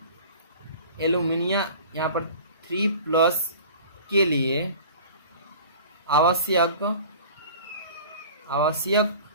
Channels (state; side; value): inverted; both; correlation -0.41